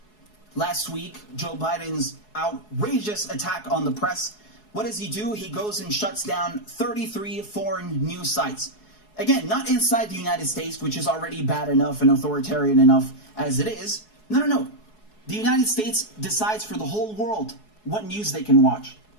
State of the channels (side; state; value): right; late; 4.7 ms